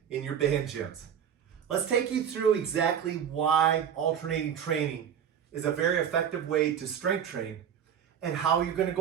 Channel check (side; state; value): left; quieter; 8.5 dB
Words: in your band gyms. Let's take you through exactly why alternating training is a very effective way to strength train and how you're going to